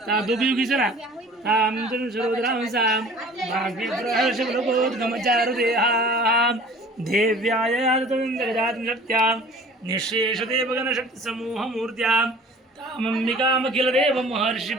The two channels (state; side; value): normal; both; correlation 0.47